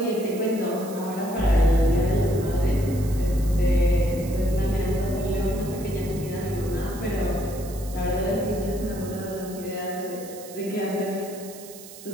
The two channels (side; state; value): right; noise; hiss, 16 dB below the sound